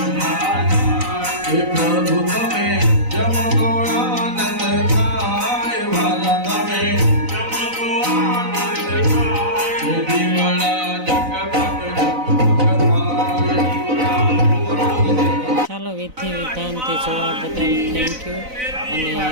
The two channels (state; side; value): late; left; 4.0 ms